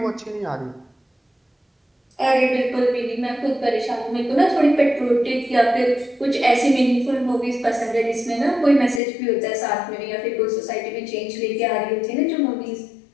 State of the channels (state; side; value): drops out; right; at 9.0 s